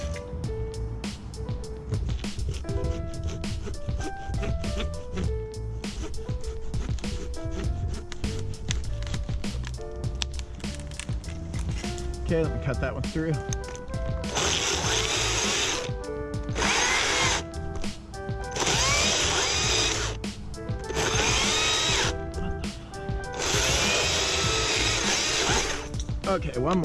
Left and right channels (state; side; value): identical; both; correlation 1.00